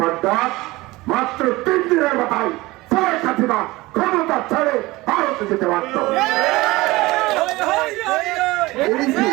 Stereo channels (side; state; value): left; quieter; 20.4 dB